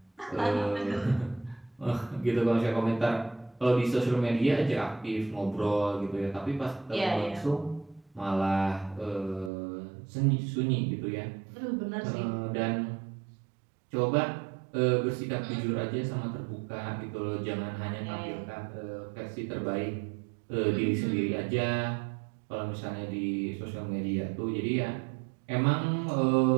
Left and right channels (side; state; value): left; drops out; at 9.5 s